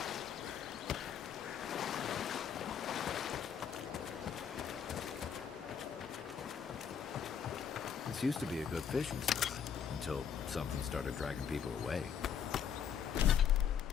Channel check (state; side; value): quieter; right; 7.8 dB